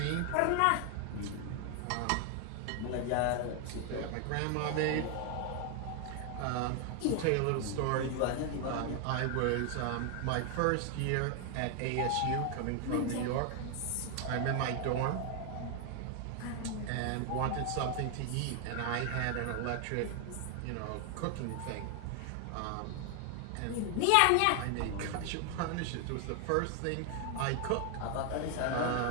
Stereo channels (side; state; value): both; different; correlation 0.00